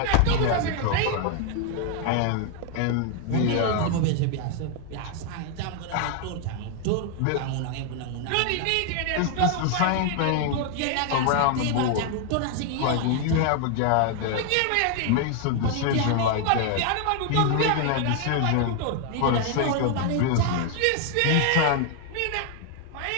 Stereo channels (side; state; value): both; different; correlation 0.00